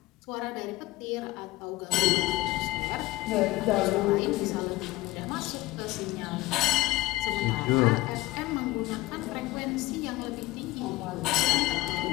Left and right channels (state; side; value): quieter; right; 18.5 dB